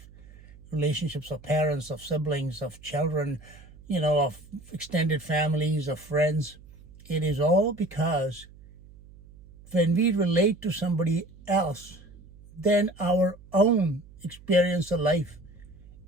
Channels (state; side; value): noise; right; hum, 22 dB below the sound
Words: Relationships of parents, of siblings, of children, of extended families, of friends. It is all because when we relate to somebody else, then our own experience of life